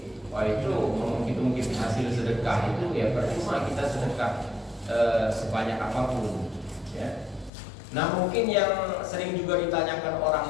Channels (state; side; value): drops out; right; at 7.5 s